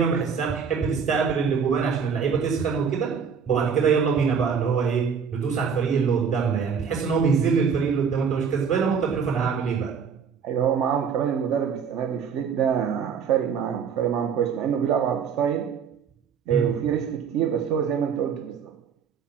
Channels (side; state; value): left; quieter; 6.5 dB